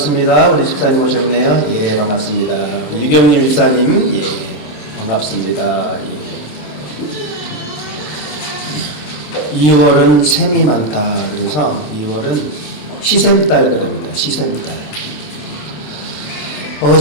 우리 집사님 오셨네요. 예, 반갑습니다. 우리 유경림 집사님, 예, 반갑습니다. 예. 2월은 샘이 많다. 그래서 2월은 시샘달 그럽니다. 시샘달.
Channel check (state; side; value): late; right; 27 ms